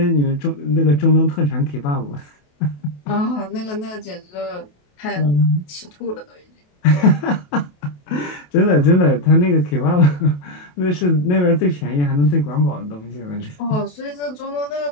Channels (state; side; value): late; right; 28 ms